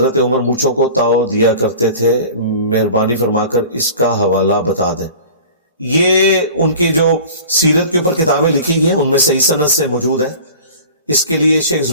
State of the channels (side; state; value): both; inverted; correlation -0.41